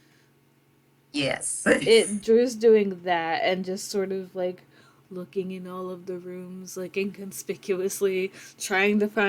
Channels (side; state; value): both; identical; correlation 1.00